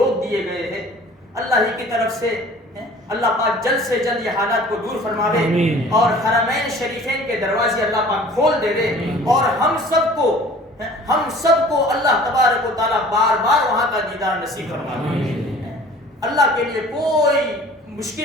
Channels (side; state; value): both; normal; correlation 0.48